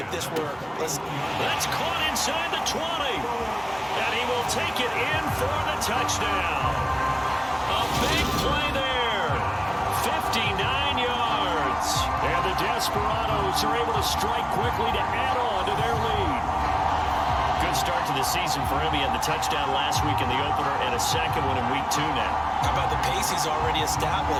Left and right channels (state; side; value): identical; both; correlation 1.00